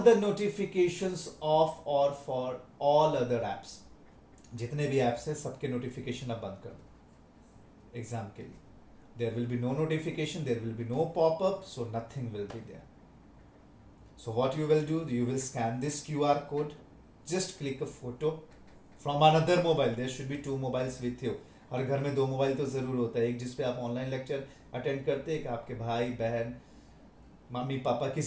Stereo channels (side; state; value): both; identical; correlation 1.00